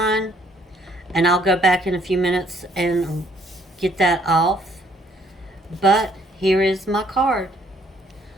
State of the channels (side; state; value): both; normal; correlation 0.65